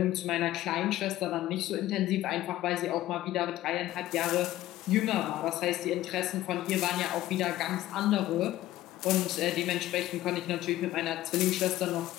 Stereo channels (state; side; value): quieter; right; 14.9 dB